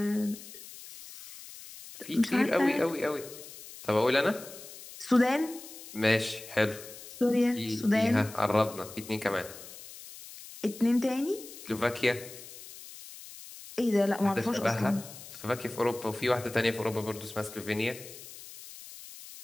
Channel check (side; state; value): left; noise; hiss, 15 dB below the sound